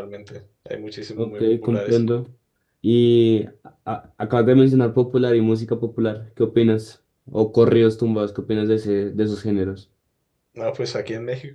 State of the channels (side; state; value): both; identical; correlation 1.00